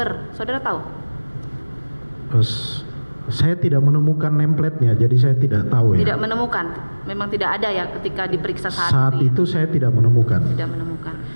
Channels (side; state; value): both; inverted; correlation -1.00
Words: saudara tahu? Saya tidak menemukan template-nya, jadi saya tidak tahu ya. Tidak menemukan, memang tidak ada ya ketika diperiksa saat itu. Itu saya tidak menemukan. Tidak menemukan.